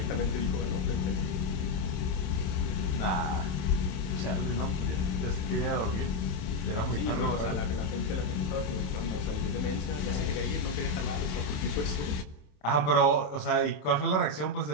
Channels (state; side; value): late; right; 28 ms